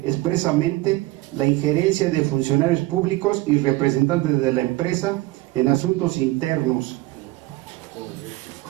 expresamente la injerencia de funcionarios públicos y representantes de la empresa en asuntos internos.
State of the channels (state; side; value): quieter; left; 18.9 dB